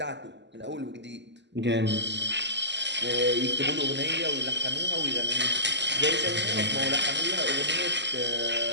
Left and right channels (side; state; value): left; late; 0.51 ms